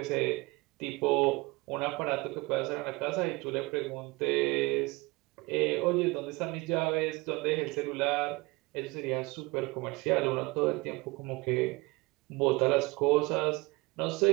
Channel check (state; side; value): quieter; left; 23.7 dB